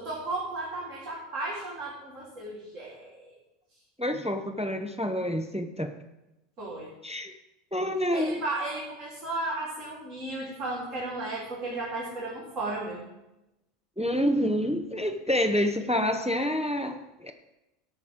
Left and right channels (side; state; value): both; normal; correlation 0.53